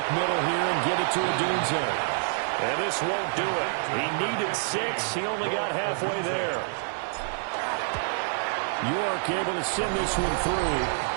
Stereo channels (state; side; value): silent; left; 60 dB below the other